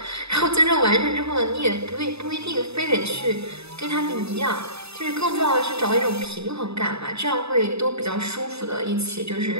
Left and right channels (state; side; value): late; left; 0.79 ms